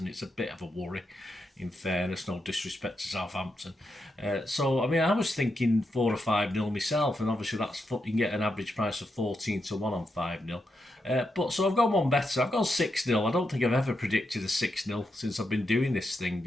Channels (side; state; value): both; normal; correlation 0.84